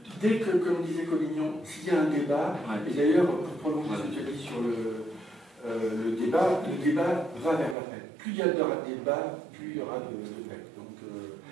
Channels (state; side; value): drops out; left; at 7.8 s